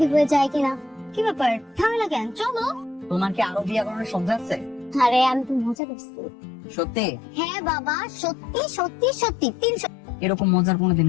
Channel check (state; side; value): drops out; right; at 5.8 s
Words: হয়ে যায় কিনা। কি ব্যাপার, ঝামেলা কেন? চলো। তোমার কি আরো বিয়ে করানোর শব্দ আছে? আরে আমি তো মজা করছি। সত্যি? হ্যাঁ বাবা, সত্যি সত্যি সত্যি 300। এরকম মজার কোনোদিন